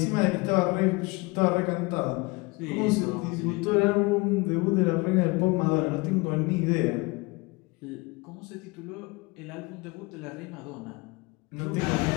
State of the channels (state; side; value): quieter; right; 25.0 dB